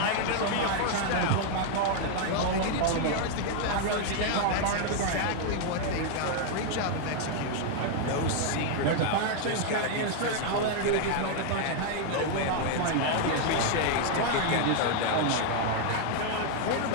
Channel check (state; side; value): different; both; correlation 0.00